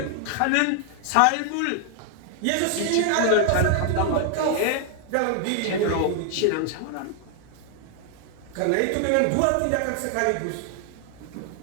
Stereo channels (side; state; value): both; different; correlation 0.00